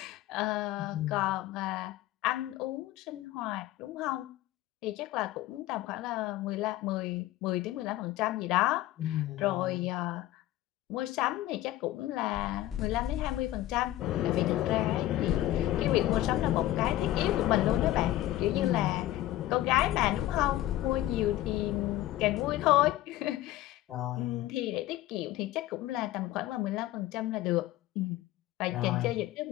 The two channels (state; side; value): quieter; right; 15.1 dB